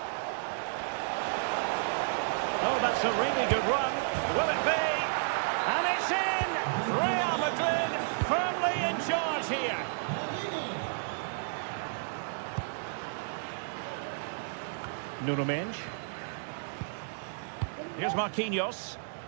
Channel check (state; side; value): silent; left; digital silence